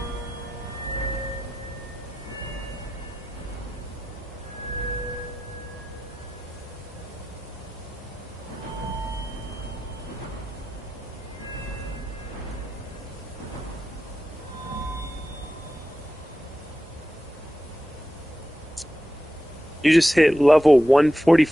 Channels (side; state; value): both; normal; correlation 0.91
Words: You just hit level